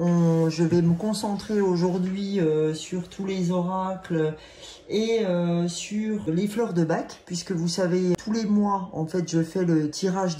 vais me concentrer aujourd'hui sur tous les oracles et sur les fleurs de Bach, puisque vous savez, tous les mois, en fait, je fais le tirage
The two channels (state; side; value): identical; both; correlation 1.00